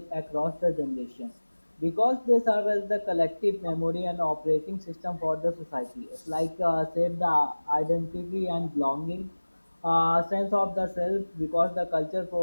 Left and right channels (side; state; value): both; inverted; correlation -1.00